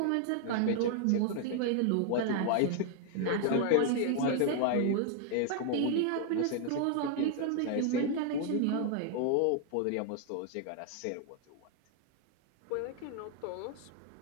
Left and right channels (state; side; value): different; both; correlation 0.00